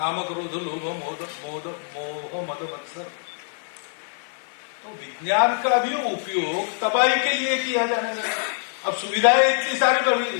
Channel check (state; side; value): silent; right; digital silence